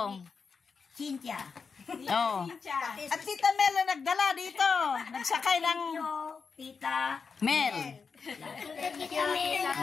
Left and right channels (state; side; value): quieter; right; 5.3 dB